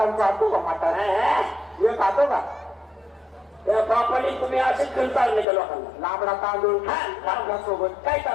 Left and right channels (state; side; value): drops out; right; at 5.5 s